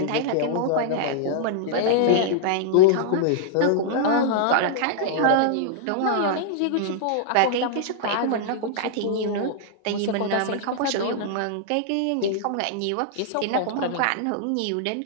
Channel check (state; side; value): different; both; correlation -0.01